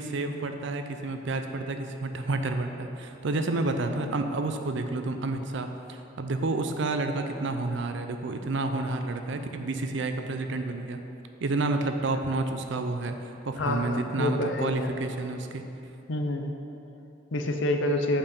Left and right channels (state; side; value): normal; both; correlation 0.44